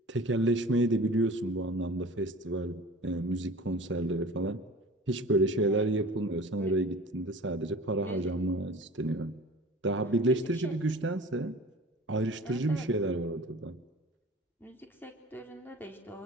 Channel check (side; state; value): both; normal; correlation 0.42